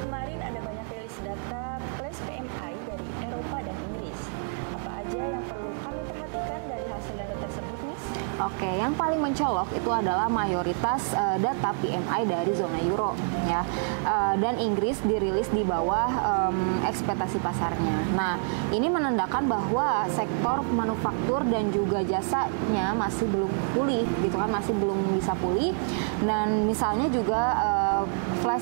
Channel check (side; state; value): left; silent; 57 dB below the other